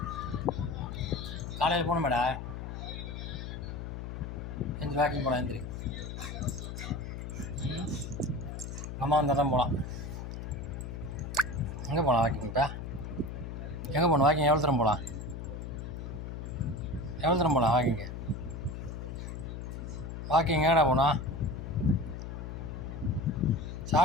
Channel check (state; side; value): noise; left; hum, 7 dB below the sound